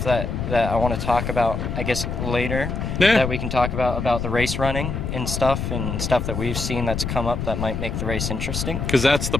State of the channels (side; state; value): left; noise; rumble, 3 dB below the sound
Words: that I want to talk about, I guess, later. Yeah. That we can talk about the race running and stuff that we've seen that's come up that might make the race interesting. Because that's the